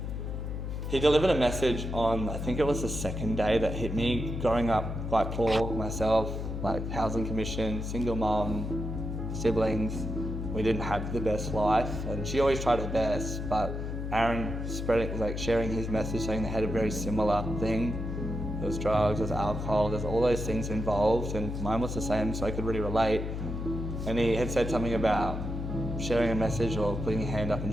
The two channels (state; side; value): noise; left; hum, 4 dB below the sound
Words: he delivered a message on, I think it was the second day, that hit me. Growing up quite poor myself, like housing commission, single mom, siblings, we didn't have the best life, and she always tried her best, but Aaron sharing his message, saying they had a very similar thing. There was drugs, there's alcohol, there's all those things involved, and mine was the same, so I could really relate. And he had said something about sharing a message or putting your hand up